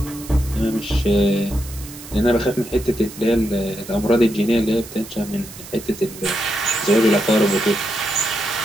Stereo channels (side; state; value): right; noise; hiss, 16 dB below the sound